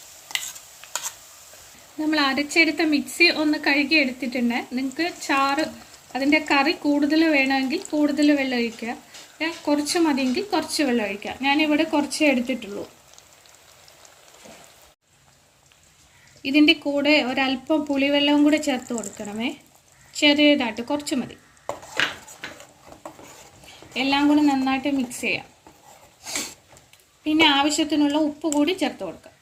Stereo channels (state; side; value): identical; both; correlation 1.00